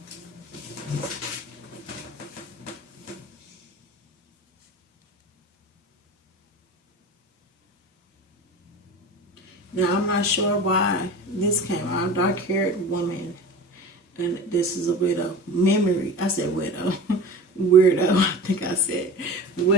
Now, I'm not sure why this came out. Dark-haired woman, and this is a widow. Memory. I said widow. Weirdo. I think I said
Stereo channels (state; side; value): normal; both; correlation 0.34